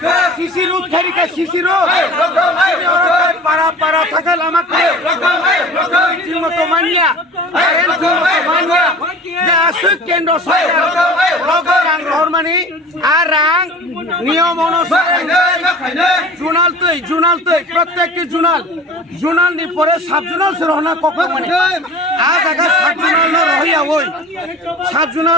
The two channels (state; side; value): normal; both; correlation 0.40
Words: CC root খারিকা CC root পাড়া থাকা লামাকে ঠিকমতো মানিয়া যে আসুক কেন্দ্র সরকার রাং রহমানি আর রাং নিয়ম অনুসারে জুনাল তৈ প্রত্যেকটি জুনাল নি পরে সাব জুনাল রহনা কখন মানে আজ আগা সাব জুনাল রহিয়া ওই সাব